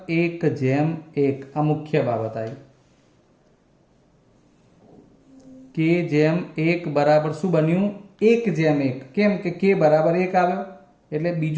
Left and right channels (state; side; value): identical; both; correlation 1.00